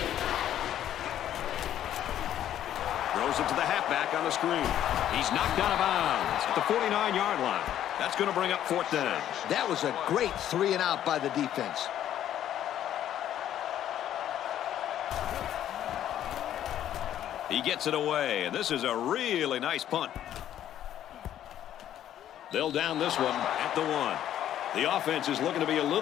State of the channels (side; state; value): right; quieter; 11.3 dB